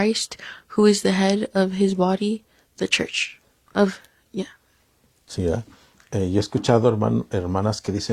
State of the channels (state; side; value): identical; both; correlation 1.00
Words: who is the head of his body, the church. Sí, yo he escuchado hermanas que